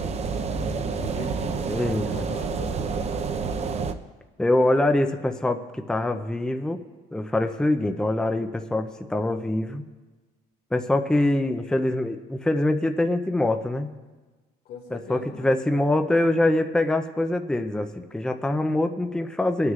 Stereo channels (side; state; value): both; normal; correlation 0.87